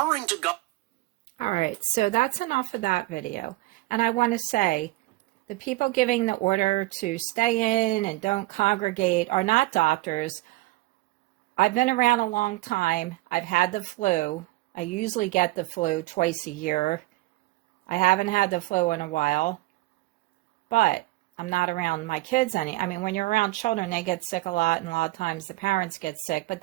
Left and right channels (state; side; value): quieter; left; 19.7 dB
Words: to All right, so that's enough of that video. And I want to say, the people giving the order to stay in and don't congregate are not doctors. I've been around a long time. I've had the flu. I usually get the flu twice a year. I haven't had the flu in a while, but I'm not around my kids any. I mean, when you're around children, they get sick a lot, and a lot of times the parents get sick, but